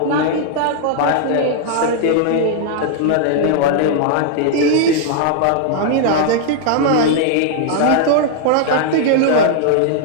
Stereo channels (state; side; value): different; both; correlation -0.01